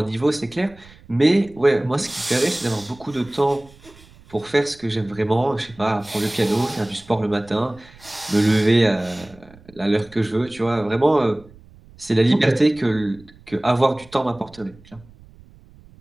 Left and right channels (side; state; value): right; noise; rumble, 24 dB below the sound